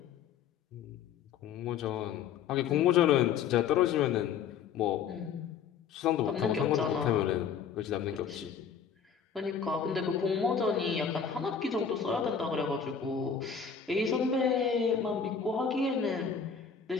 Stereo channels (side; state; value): right; quieter; 7.0 dB